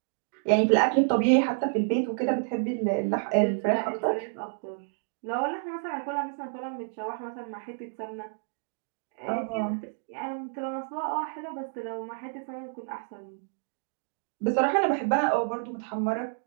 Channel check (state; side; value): silent; left; digital silence